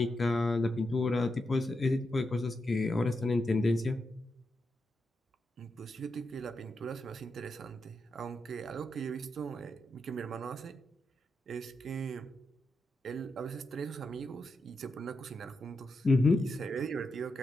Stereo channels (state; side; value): normal; both; correlation 0.86